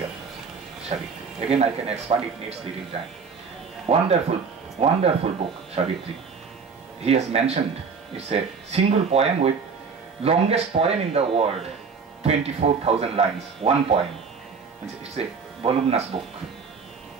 of Savitri. Again, I can expand, it needs little time. Wonderful book, Savitri. He has mentioned, it's a single poem with longest poem in the world, 24,000 lines, one poem. It's a voluminous book,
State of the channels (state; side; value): quieter; left; 5.5 dB